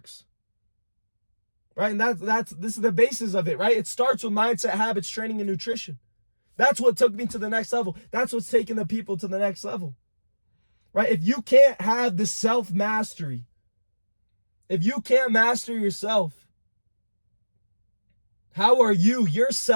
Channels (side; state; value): both; inverted; correlation -1.00